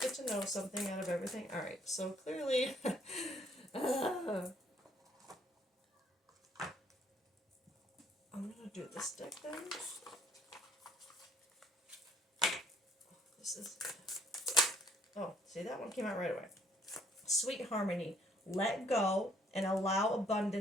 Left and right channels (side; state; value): both; normal; correlation 0.64